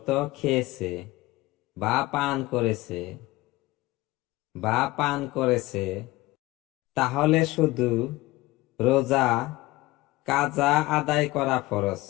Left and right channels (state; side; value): quieter; right; 19.4 dB